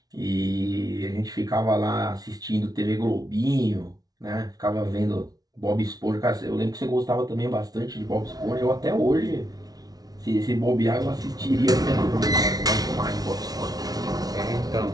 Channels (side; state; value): left; late; 0.19 ms